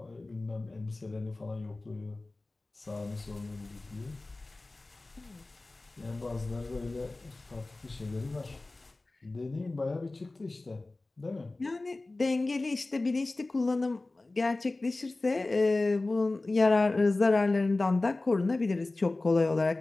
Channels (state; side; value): quieter; right; 3.1 dB